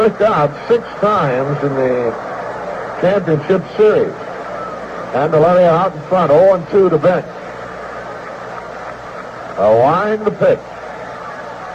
out 6 times in the championship series. Candeleria out in front, 0-2 to Bench. A wind to pitch.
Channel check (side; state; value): both; identical; correlation 1.00